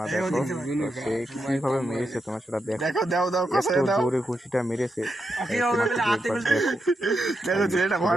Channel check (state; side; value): normal; both; correlation 0.85